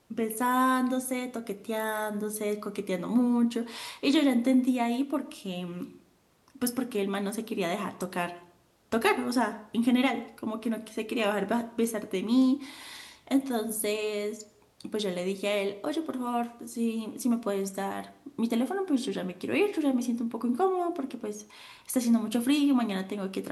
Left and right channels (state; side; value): identical; both; correlation 1.00